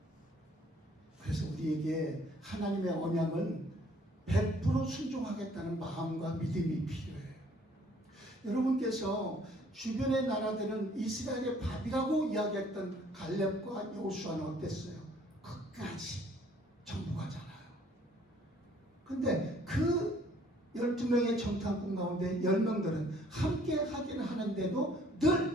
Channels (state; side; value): normal; both; correlation 0.59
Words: 그래서 우리에게 하나님의 언약은 100% 순종하겠다는 마음과 믿음이 필요해요. 여러분께서 주변의 나라들은 이스라엘의 밥이라고 이야기했던 갈렙과 여호수아는 어땠어요? 끝까지 근데 그 12명의 정탐꾼 가운데 10명들은 함께 하기는 하는데도